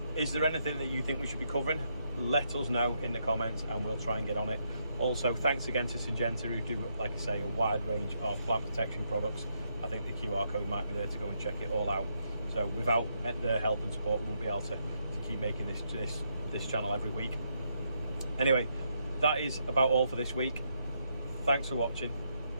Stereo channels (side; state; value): both; inverted; correlation -0.78